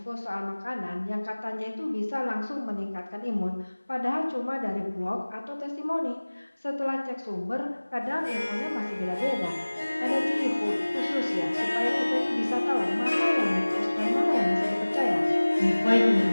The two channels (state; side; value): inverted; both; correlation -1.00